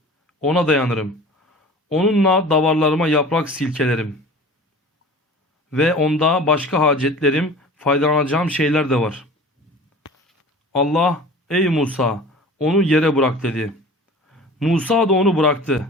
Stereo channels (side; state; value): both; normal; correlation 0.40